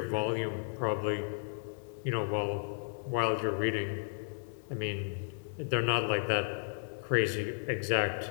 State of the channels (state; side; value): silent; right; 55 dB below the other